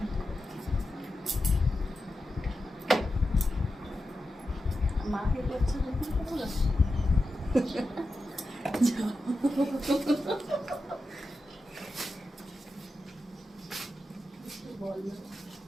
মাকে করছে দেখুন কত বলো,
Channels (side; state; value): both; normal; correlation 0.90